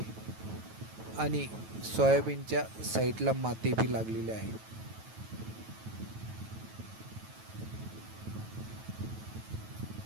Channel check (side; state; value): left; late; 9.2 ms